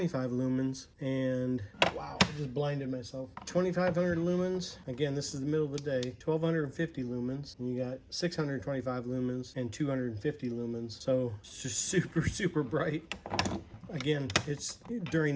lumens. And wow, I just blinded myself. 2500 lumens. Again, this is the middle of the day. 1250 lumens. And you got 625 lumens and 250 lumens. So it's just super bright. Again, it's during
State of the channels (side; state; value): both; identical; correlation 1.00